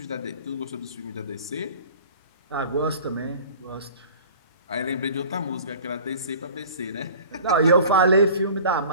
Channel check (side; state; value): both; inverted; correlation -0.44